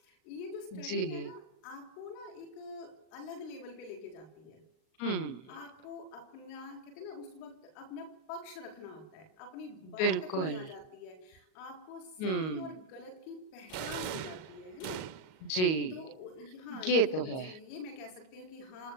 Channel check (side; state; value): right; late; 38 ms